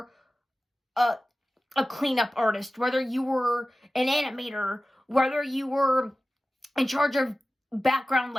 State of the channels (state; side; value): normal; both; correlation 0.96